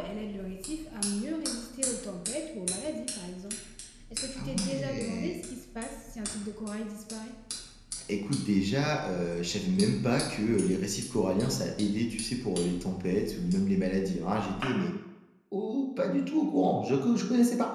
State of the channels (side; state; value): both; identical; correlation 1.00